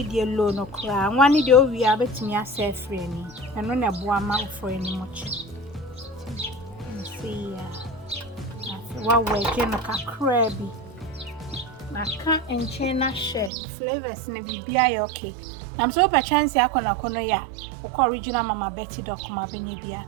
your loan or cry. One day we are betting yourself friendly, and on a boama for any much. See, what way can a crabby? I can't and chain share flavors in a BBI okay. I'm so by chance I can ya, or original Mamma Betty Doc, my benny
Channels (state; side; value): drops out; left; at 13.5 s